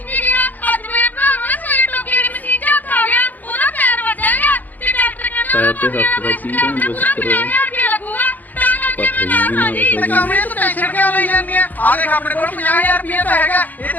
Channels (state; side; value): late; right; 0.083 ms